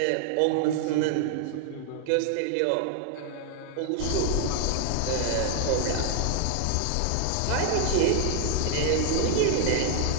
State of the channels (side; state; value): both; different; correlation 0.00